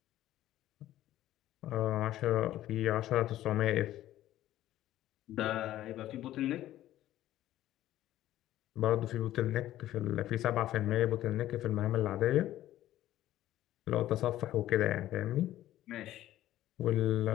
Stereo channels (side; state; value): right; quieter; 13.8 dB